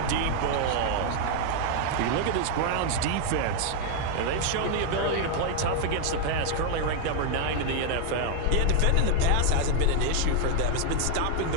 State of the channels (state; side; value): different; both; correlation 0.00